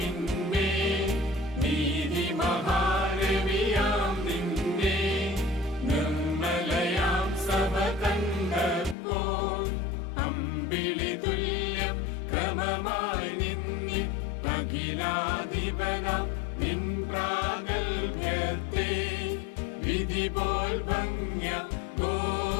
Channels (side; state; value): right; drops out; at 9.0 s